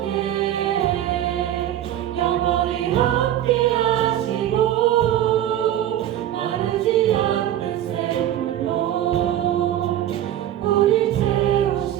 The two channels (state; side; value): quieter; left; 11.9 dB